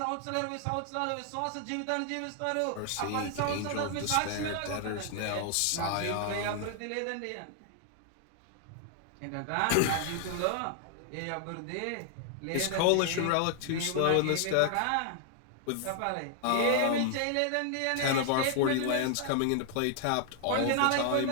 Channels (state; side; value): different; both; correlation 0.00